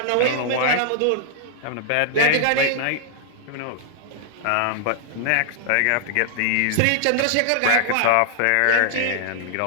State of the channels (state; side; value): different; both; correlation -0.01